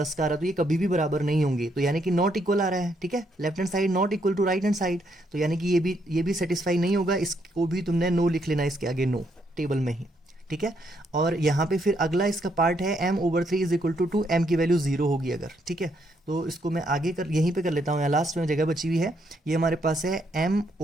का आ रहा है, तो ये कभी भी बराबर नहीं होंगे, तो यानी कि नॉट इक्वल आ रहा है। ठीक है, left hand side not equal to right hand side, तो यानी कि ये भी सेटिस्फाई नहीं होगा, इसको भी तुमने नो लिख लेना इसके आगे, नो टेबल में ही। ठीक है, और यहाँ पे फिर अगला इसका पार्ट है m/3 is equal to 2, m की वैल्यू 0 होगी अगर। ठीक है, तो इसको मैं आगे यहीं पे कर लेता हूँ, यहाँ लास्ट में जगह बची हुई है। ये हमारे पास है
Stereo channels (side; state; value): both; normal; correlation 0.74